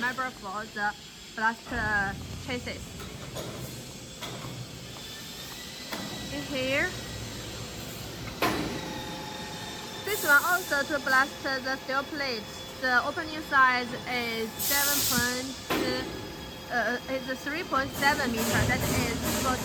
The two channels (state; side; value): identical; both; correlation 1.00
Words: for the blast chassis. In here, this one also to blast the steel plate. The opening size is 3.7 meter. That is able